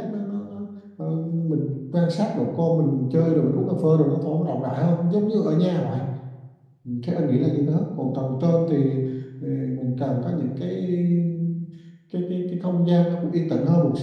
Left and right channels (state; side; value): identical; both; correlation 1.00